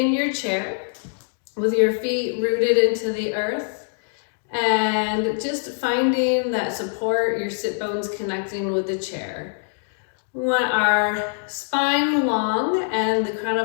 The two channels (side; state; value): right; silent; 63 dB below the other